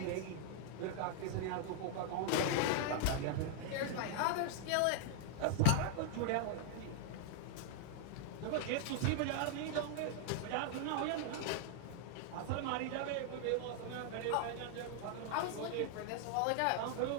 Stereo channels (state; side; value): different; both; correlation -0.01